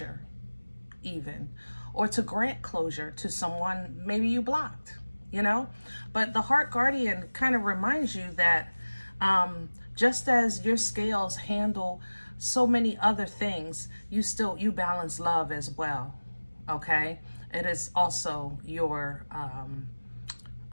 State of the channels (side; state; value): both; inverted; correlation -1.00